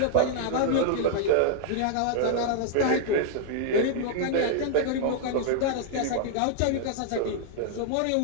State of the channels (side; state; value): both; different; correlation -0.01